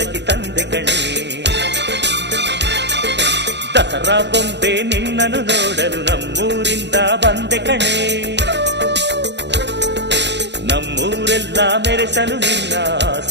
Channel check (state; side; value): late; left; 0.51 ms